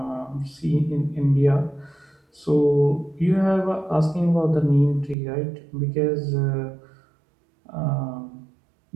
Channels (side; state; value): left; drops out; at 5.2 s